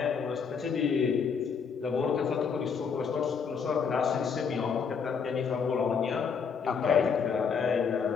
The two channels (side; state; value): right; quieter; 6.2 dB